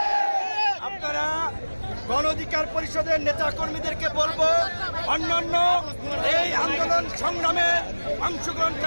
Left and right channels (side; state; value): both; inverted; correlation -1.00